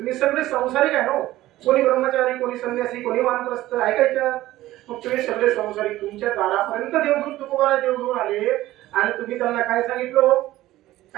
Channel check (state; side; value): quieter; left; 15.8 dB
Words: सगळे संसारिक आहे ना. कोणी ब्रह्मचारी, कोणी संन्यासी, कोणी वानप्रस्थ, ऐकायच्या. मग तुम्ही सगळे संसारिक तुमच्या दारापर्यंत देव घेऊन तुकोबारा देव घेऊन आले आणि तुम्ही त्यांना काय सांगितलं,